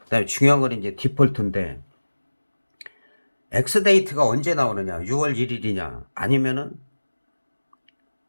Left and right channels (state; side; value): inverted; both; correlation -1.00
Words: 그다음에 중요한 건 이제 디폴트인데 엑스데이트가 언제 나오느냐, 6월 1일이냐, 아니면은